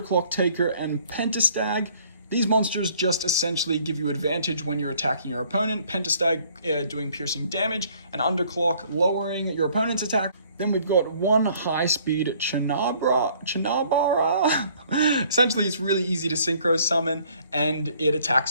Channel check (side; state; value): both; inverted; correlation -0.60